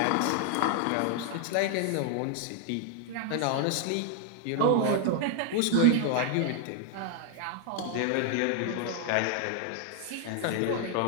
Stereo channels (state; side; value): different; both; correlation 0.00